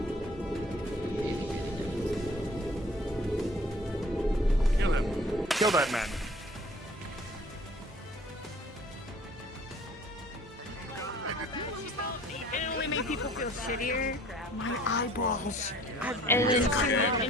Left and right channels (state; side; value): normal; both; correlation 0.52